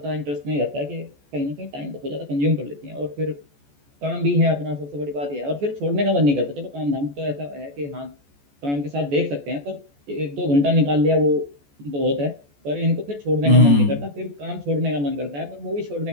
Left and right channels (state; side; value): late; left; 14 ms